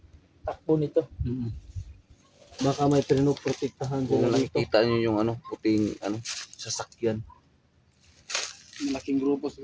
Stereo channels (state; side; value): identical; both; correlation 1.00